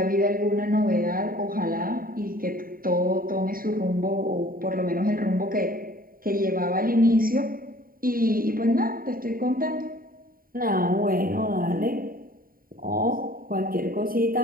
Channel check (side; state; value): left; late; 0.42 ms